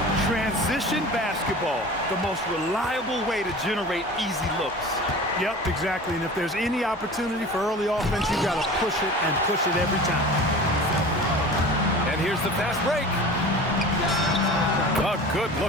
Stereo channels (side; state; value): both; normal; correlation 0.38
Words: Transition basketball, the most reliable way to generate easy looks. Yep, exactly. And if there's any opportunity for early offense, you've got to push it and push it every time. And here's the fast break. A